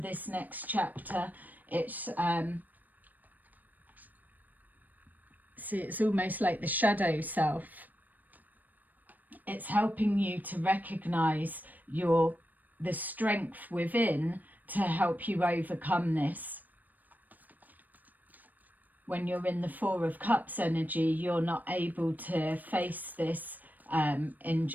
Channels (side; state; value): left; late; 0.084 ms